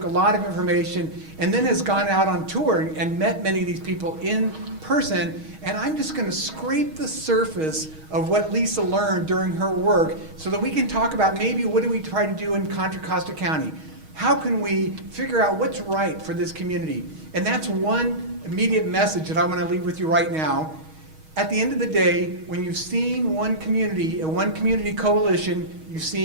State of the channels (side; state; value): left; late; 6.3 ms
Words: a lot of information, and then has gone out on tour and met many of these people in person. And I'm just going to scrape the surface of what Lisa learned during her work so that we can talk about maybe what do we try to do in Contra Costa County. How can we figure out what's right for this community? And that's one immediate message that I want to leave with you right now. At the end of the day, when you've seen one community, a one community coalition, you've